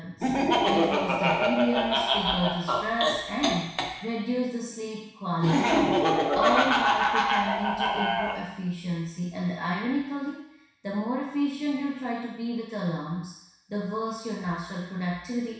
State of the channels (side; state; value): both; identical; correlation 1.00